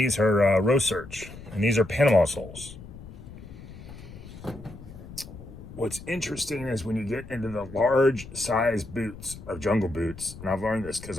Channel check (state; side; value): noise; left; rumble, 15 dB below the sound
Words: are Research, and these are Panama soles. What's interesting is when you get into the large size boots of jungle boots, and I've learned this because